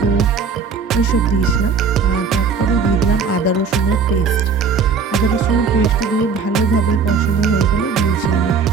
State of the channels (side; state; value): left; quieter; 5.4 dB